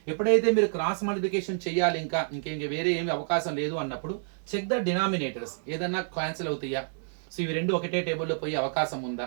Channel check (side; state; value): left; silent; digital silence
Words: ఎప్పుడైతే మీరు క్రాస్ మల్టిప్లికేషన్ చేయాలి, ఇంకా వేరే ఏమి అవకాశం లేదు అన్నప్పుడు చెక్ ద డినామినేటర్స్, ఏదైనా క్యాన్సిల్ అవుతాయా. సో ఇవి రెండు ఒకటే టేబుల్లో పోయే అవకాశం